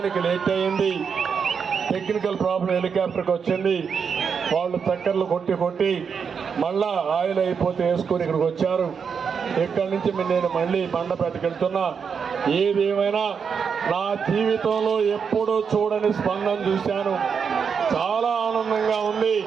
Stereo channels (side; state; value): left; quieter; 6.4 dB